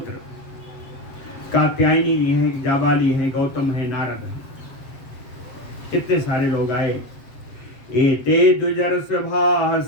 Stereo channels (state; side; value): late; right; 7.9 ms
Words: कात्यायनी जी हैं, जाबाली हैं, गौतम है, नारद है। कितने सारे लोग आए। एते द्विजर सभा